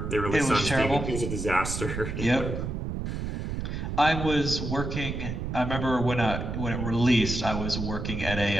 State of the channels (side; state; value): right; noise; rumble, 4 dB below the sound